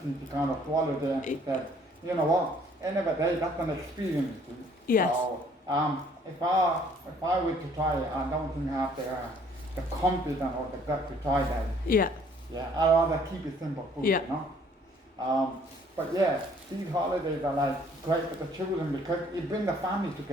she kind of swallowed it, and she said, you know what? End of the day, that's an experience too. Yes. So if I were to try it, I don't think I have the confidence or the gut to try that. Yeah. Yeah. I'd rather keep it simple food. Yeah. You know. But yeah, these holidays are like great for the children because it brings the family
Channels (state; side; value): normal; both; correlation 0.60